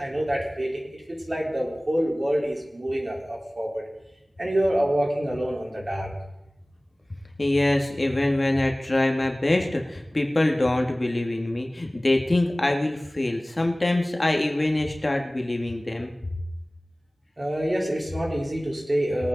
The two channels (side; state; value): both; normal; correlation 0.98